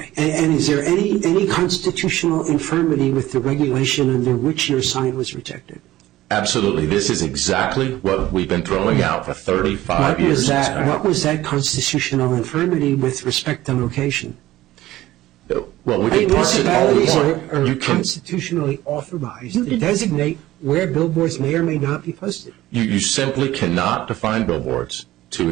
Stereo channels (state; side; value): quieter; left; 15.7 dB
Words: And is there any constitutional infirmity with the regulation under which your sign was rejected? Absolutely. This is exactly what we've been throwing out for 35 years. What was that constitutional infirmity with respect to location? Well, we can parse it all we want. Municipalities are constitutionally authorized to designate where billboards may or may not be posted. You simply cannot define billboards to